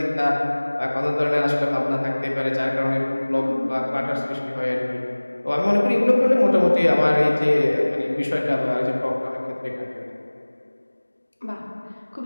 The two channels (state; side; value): inverted; both; correlation -1.00